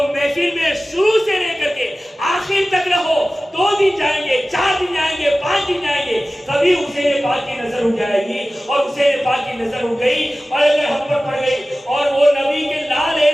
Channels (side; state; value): both; normal; correlation 0.96